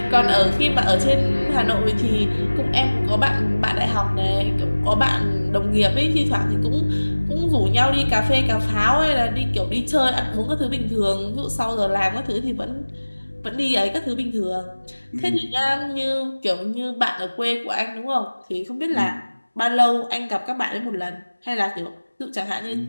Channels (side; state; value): both; inverted; correlation -1.00